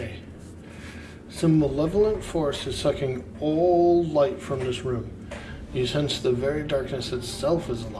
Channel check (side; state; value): both; identical; correlation 1.00